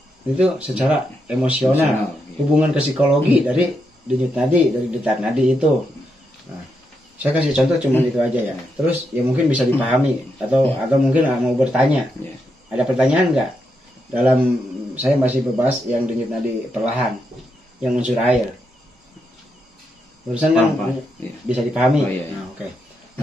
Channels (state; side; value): normal; both; correlation 0.82